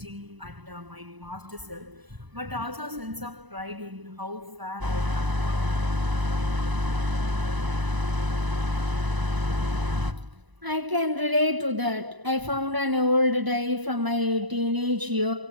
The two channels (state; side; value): late; left; 1.0 ms